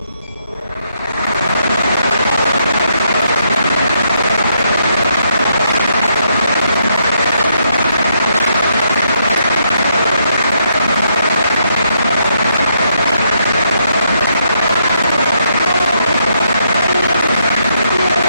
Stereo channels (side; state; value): both; inverted; correlation -0.76